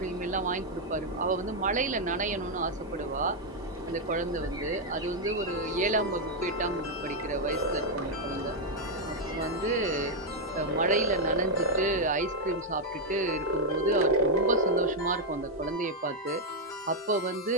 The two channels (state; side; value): normal; both; correlation -0.01